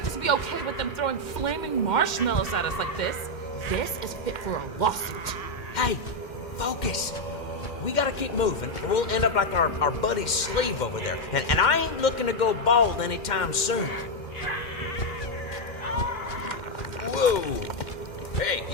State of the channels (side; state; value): right; late; 2.1 ms